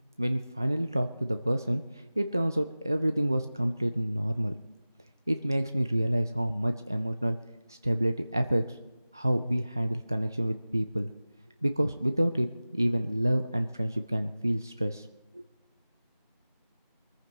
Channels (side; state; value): both; inverted; correlation -0.97